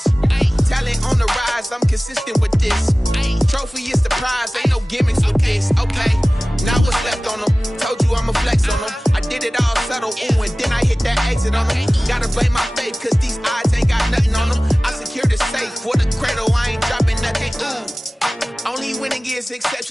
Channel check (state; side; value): normal; both; correlation 0.98